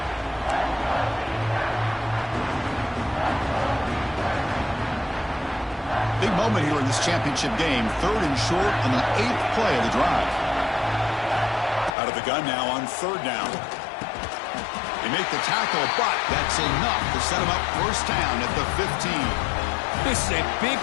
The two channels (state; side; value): drops out; right; at 11.9 s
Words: Big moment here in this championship game. 3rd and short on the 8th play of the drive. Out of the gun now on 3rd down. They make the tackle, but that's enough to set them up 1st down at the 15. This is a big